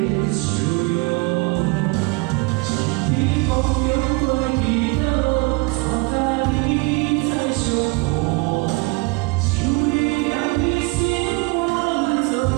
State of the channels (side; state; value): left; quieter; 26.7 dB